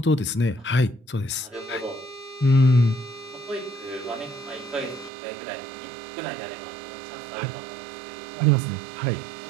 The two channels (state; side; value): drops out; left; at 5.1 s